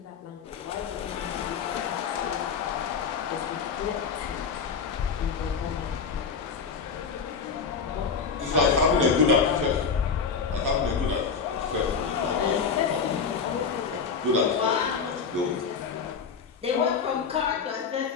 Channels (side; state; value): right; quieter; 5.8 dB